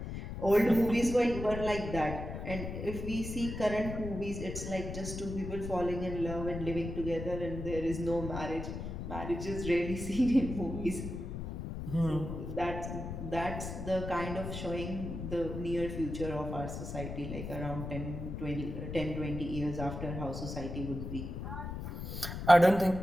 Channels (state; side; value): noise; left; rumble, 6 dB below the sound